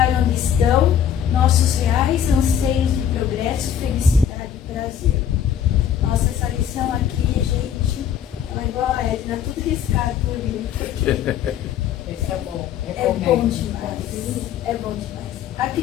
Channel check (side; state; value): right; quieter; 9.1 dB